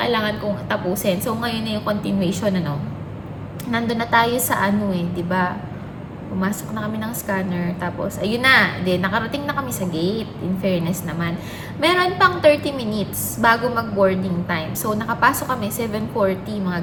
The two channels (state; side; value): identical; both; correlation 1.00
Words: kong tapusin. So, ngayon na yung continuation, nandun na tayo sa di ba? Pumasok na kami ng scanner, tapos ayun na, nakarating na kami sa gate, in fairness naman. Meron pang 30 minutes bago mag-boarding time. So, nakapasok kami 7:40,